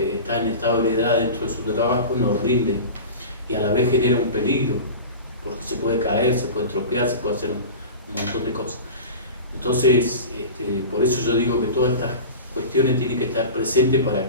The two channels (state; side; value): inverted; both; correlation -0.32